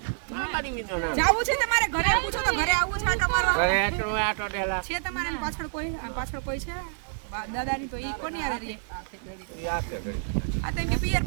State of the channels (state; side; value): silent; left; digital silence